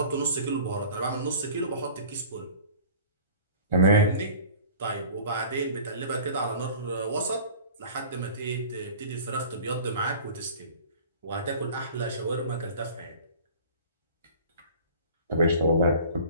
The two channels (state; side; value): inverted; both; correlation -0.44